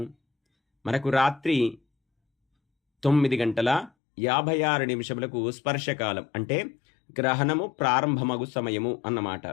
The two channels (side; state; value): right; drops out; at 3.9 s